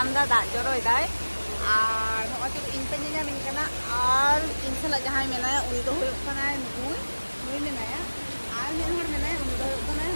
da da joroi dai ar ho tu in pe nyam in kana ar insala jahai menaya uni do hoyok kana nui menaya ar men hor menaya uni do hoyok kana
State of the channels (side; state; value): both; inverted; correlation -1.00